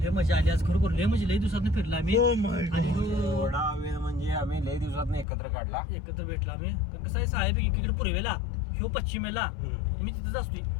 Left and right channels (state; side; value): drops out; right; at 5.2 s